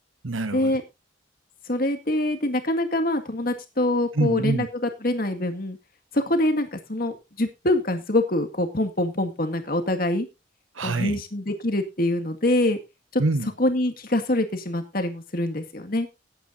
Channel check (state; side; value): normal; both; correlation 0.49